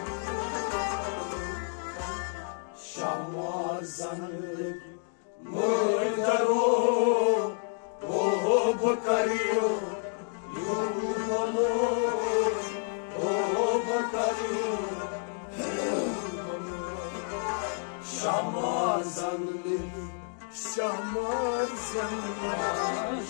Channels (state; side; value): silent; right; 58 dB below the other